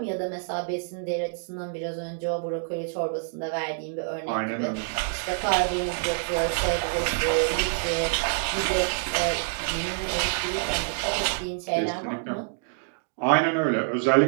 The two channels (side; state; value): left; silent; digital silence